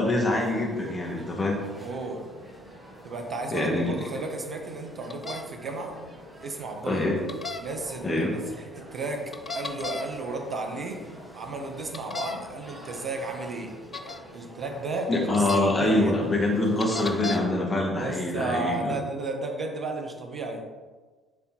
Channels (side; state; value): both; normal; correlation 0.64